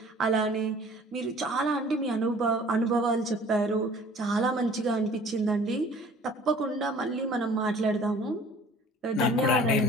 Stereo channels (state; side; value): normal; both; correlation 0.50